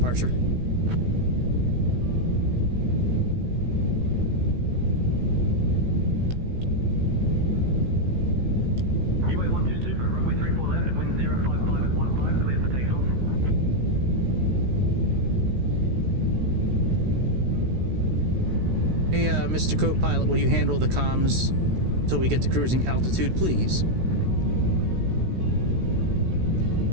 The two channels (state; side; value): late; left; 16 ms